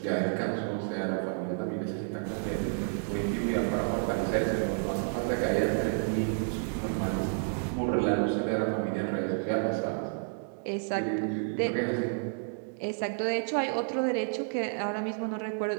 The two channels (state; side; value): silent; left; 57 dB below the other